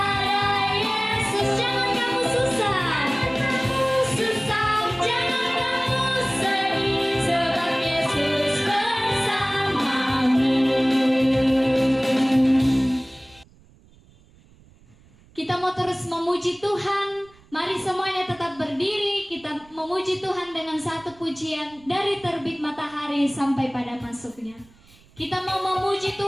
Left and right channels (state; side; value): noise; right; rumble, 28 dB below the sound